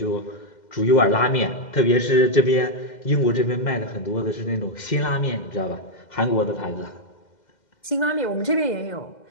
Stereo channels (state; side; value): late; right; 2.1 ms